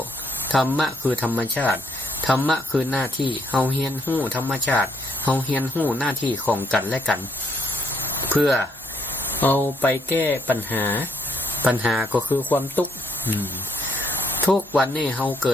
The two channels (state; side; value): normal; both; correlation 0.71